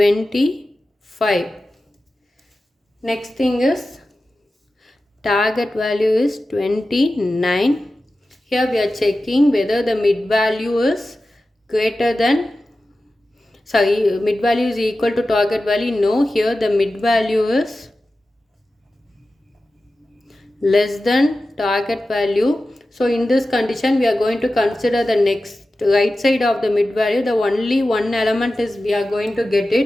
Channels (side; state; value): both; normal; correlation 0.94